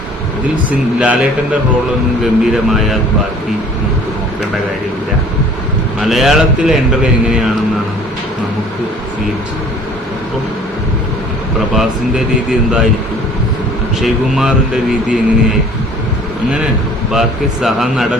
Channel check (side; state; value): both; normal; correlation 0.52